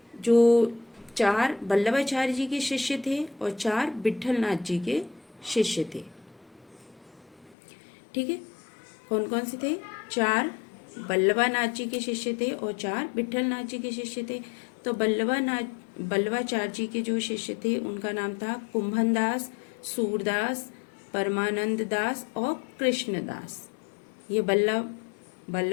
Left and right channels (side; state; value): right; drops out; at 7.6 s